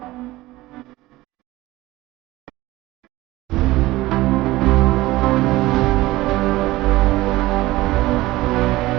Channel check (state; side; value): quieter; left; 18.3 dB